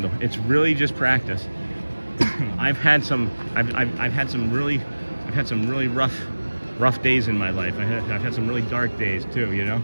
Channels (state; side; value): inverted; both; correlation -1.00